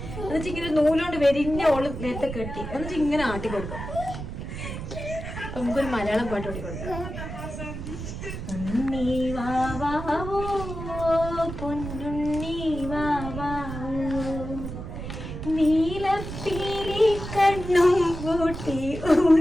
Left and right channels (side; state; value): right; noise; rumble, 8 dB below the sound